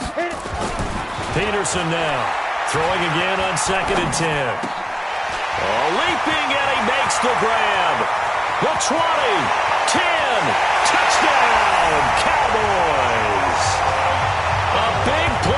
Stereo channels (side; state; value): both; identical; correlation 1.00